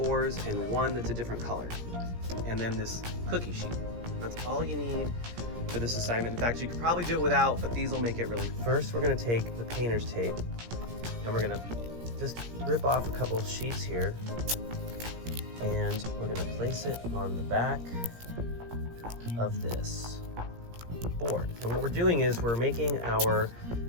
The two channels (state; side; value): late; left; 17 ms